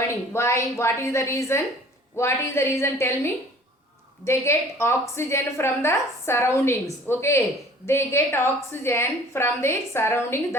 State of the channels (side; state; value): both; normal; correlation 0.50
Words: Why? What is the reason? What is the reason? Tell me. They get oxygen from the surroundings. Okay, they get oxygen from the surrounding.